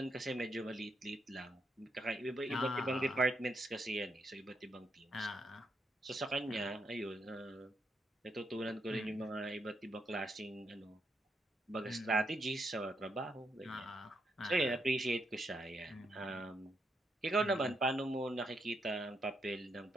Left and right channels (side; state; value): both; normal; correlation 0.79